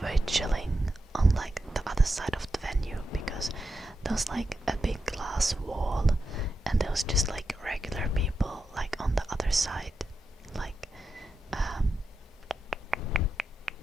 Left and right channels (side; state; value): both; normal; correlation 0.88